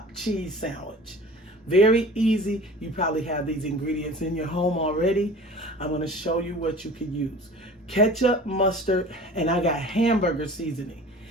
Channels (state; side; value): normal; both; correlation 0.42